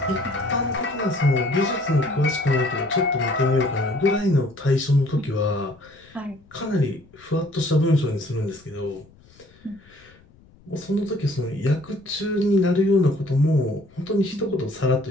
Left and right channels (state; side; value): noise; left; rumble, 27 dB below the sound